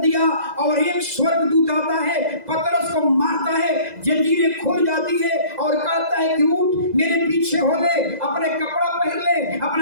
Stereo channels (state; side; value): late; left; 2.0 ms